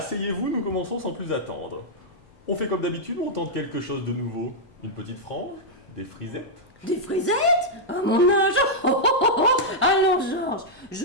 nous commençons sans plus attendre. On fait comme d'habitude ou on tente quelque chose de nouveau? Une petite frange? Des frisettes? Des frisettes? À mon âge? Alors, Georges,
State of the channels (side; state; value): both; normal; correlation -0.05